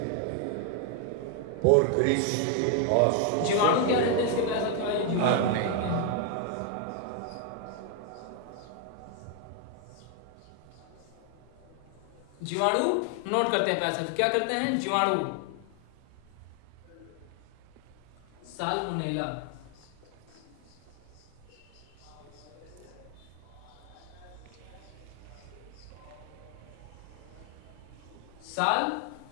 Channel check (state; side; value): different; both; correlation 0.00